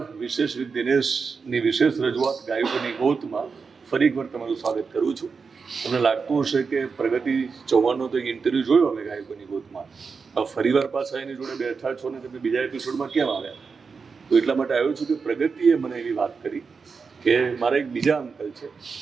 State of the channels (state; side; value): quieter; left; 5.2 dB